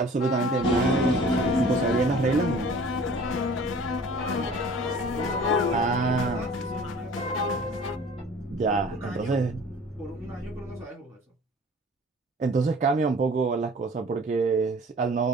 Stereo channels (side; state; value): both; normal; correlation 0.47